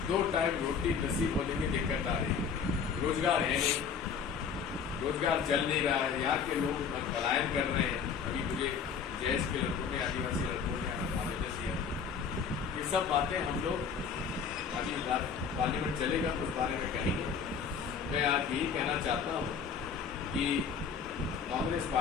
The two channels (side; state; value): right; quieter; 6.4 dB